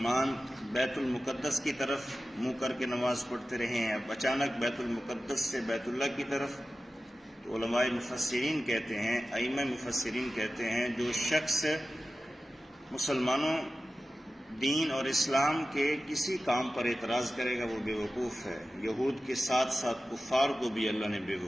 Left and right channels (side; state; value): both; normal; correlation 0.94